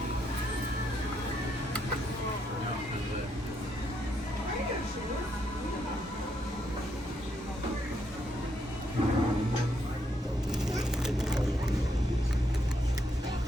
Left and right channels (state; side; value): normal; both; correlation 0.76